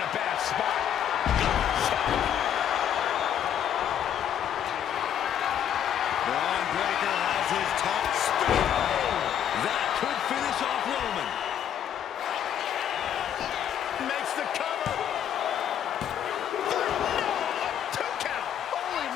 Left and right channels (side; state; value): right; quieter; 9.7 dB